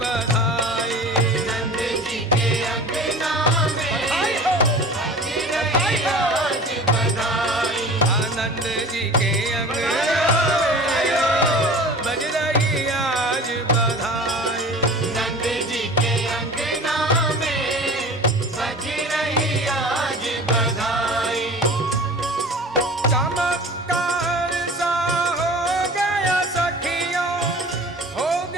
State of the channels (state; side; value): normal; both; correlation 0.40